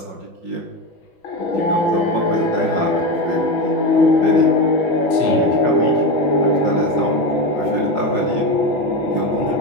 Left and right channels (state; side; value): late; right; 5.6 ms